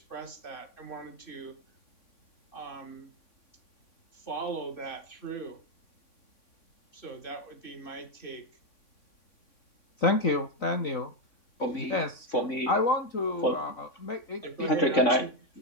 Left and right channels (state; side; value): late; right; 3.6 ms